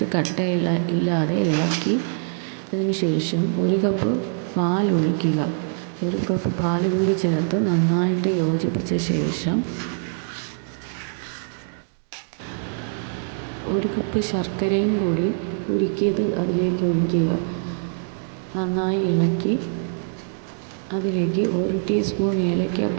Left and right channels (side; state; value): left; silent; digital silence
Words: കട്ടയില്ലാതെ ഇളക്കിയതിന് ശേഷം 1 കപ്പ് പാൽ ഒഴിക്കുക. 1 കപ്പ് പാൽ കൂടി ചേർത്ത് നന്നായിട്ട് യോജിപ്പിച്ച ശേഷം 1 കപ്പ് ശർക്കരയും കൂടി ഉരുക്കിയത് അതിലേക്ക് ഒഴിക്കുക. നന്നായി ഇളക്കി അതിലേക്ക് 1 ടീസ്പൂൺ